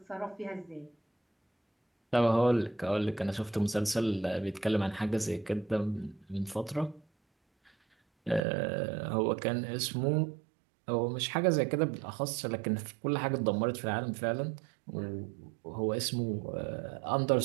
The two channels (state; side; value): drops out; left; at 8.4 s